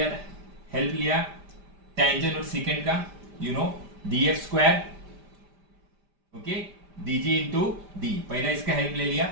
help लिया tangent और second का, you know, df square, okay, dg into d. पहला इसका help ले लिया,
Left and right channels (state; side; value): late; left; 5.1 ms